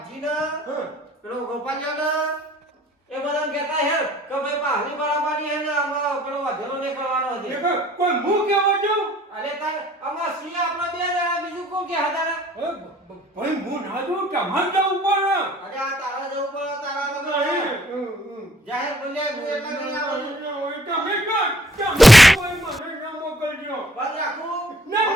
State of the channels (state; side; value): normal; both; correlation 0.59